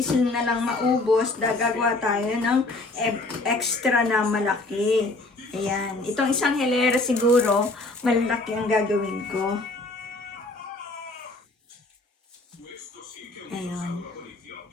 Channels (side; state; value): right; quieter; 3.1 dB